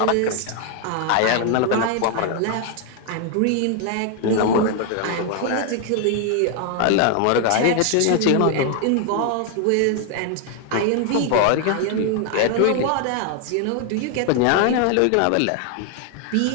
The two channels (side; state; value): both; different; correlation 0.00